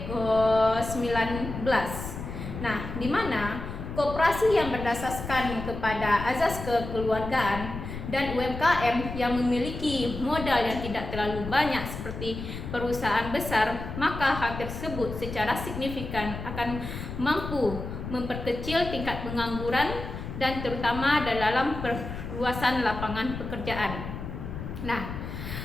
Nah, di mana koperasi yang berdasarkan kepada azas kekeluargaan dan UMKM yang memiliki modal yang tidak terlalu banyak seperti perusahaan besar, maka hal tersebut secara signifikan akan mampu memperkecil tingkat pengangguran dan terutama dalam perluasan lapangan pekerjaan. Nah,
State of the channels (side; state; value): left; noise; rumble, 8 dB below the sound